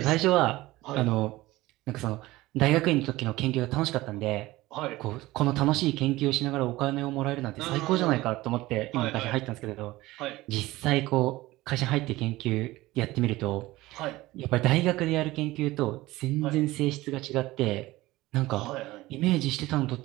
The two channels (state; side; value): quieter; left; 18.5 dB